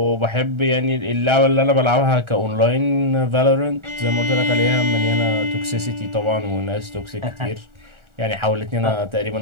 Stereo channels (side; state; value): left; late; 1.4 ms